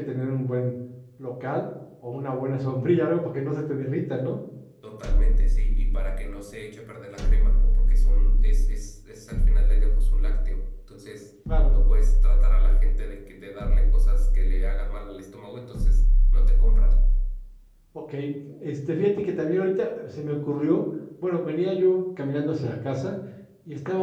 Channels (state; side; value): identical; both; correlation 1.00